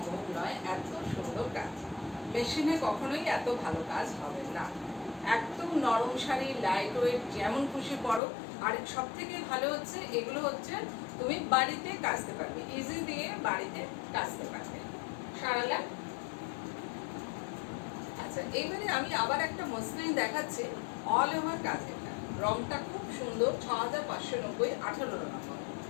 নয়। এত সুন্দর কাজ মেশিনে কখনোই এত ভালো কাজ হবে না। একদম নরম শাড়ি, লাইট ওয়েট, যেমন খুশি পরো। আর সব থেকে ভালো হচ্ছে এগুলো হচ্ছে তুমি বাড়িতে কাচতে পারবে, ইজি দিয়ে বাড়িতে কাচতে পারবে। সারালা আচ্ছা, এইবারে আমি আবার একটা মসলিন দেখাচ্ছি, অল ওভার কাজের। রংটা খুব সুন্দর, 6590, 18 নম্বর,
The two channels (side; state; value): right; drops out; at 8.2 s